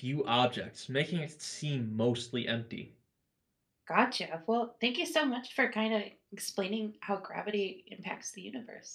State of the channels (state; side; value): identical; both; correlation 1.00